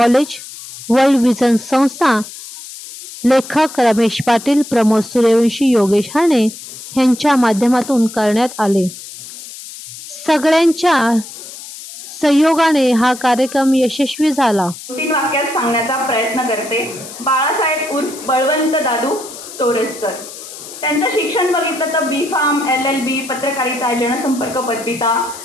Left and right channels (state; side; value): noise; left; hiss, 14 dB below the sound